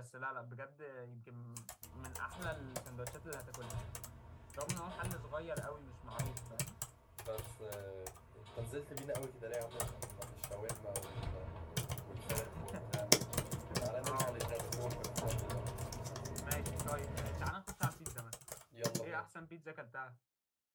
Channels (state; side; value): identical; both; correlation 1.00